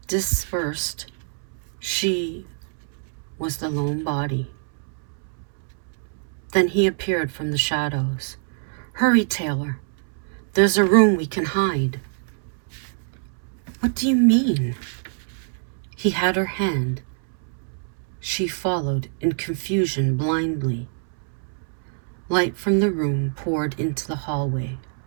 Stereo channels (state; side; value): silent; left; 62 dB below the other